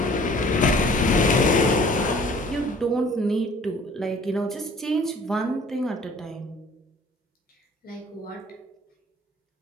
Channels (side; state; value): both; normal; correlation 0.52